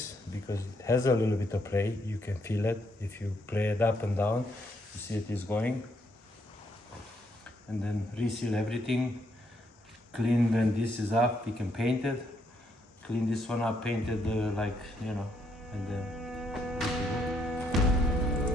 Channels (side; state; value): both; normal; correlation 0.74